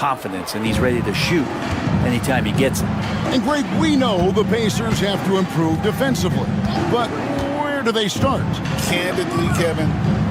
and he's ready to shoot anytime he gets it. And Greg, we know the Pacers have to improve defensively. But where do they start? Candidly, Kevin,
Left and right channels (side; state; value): both; identical; correlation 1.00